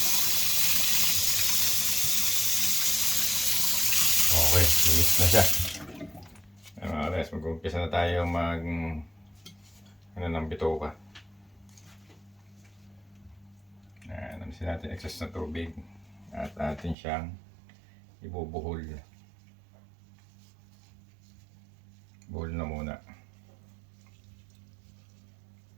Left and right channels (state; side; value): drops out; left; at 16.9 s